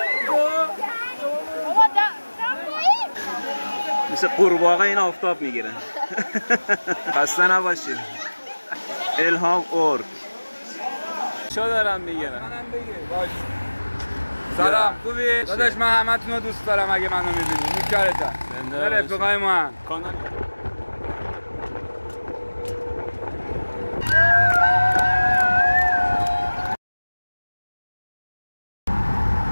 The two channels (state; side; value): inverted; both; correlation -1.00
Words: مثل قورباغه این آفتاب میگیرن. خسته نباشید. الهام اورک چه دارم میگیرن؟ منم بگیر باش. سلام خوبی؟ داداش من همتون رو دوست دارم اگه منو میبینی. نوکرتم. نه رفیقای ما هم.